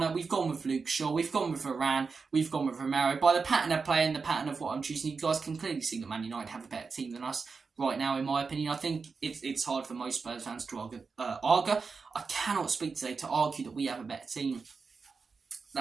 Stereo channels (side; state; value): left; quieter; 4.9 dB